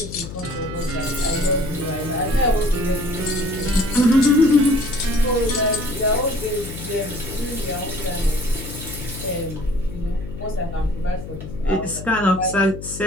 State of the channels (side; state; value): left; noise; hum, 11 dB below the sound